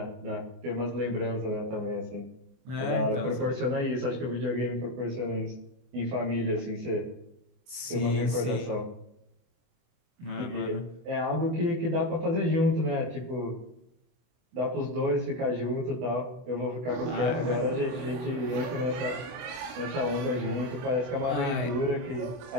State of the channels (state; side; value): late; left; 24 ms